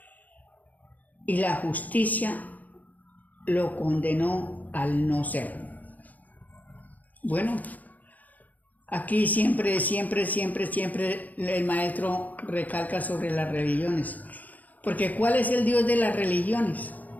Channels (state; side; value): late; right; 0.079 ms